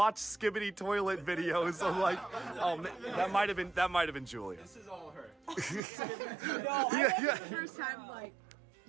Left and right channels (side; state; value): left; drops out; at 5.8 s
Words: skibbity toilet videos. I'm like, oh man, that might have been Julia. This is all her. No, I the first time like.